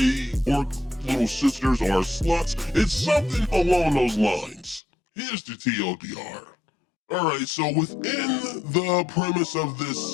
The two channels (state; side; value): drops out; right; at 4.8 s